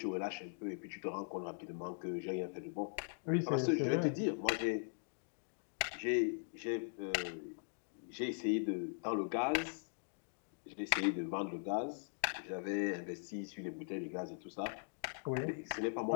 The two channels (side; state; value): right; silent; digital silence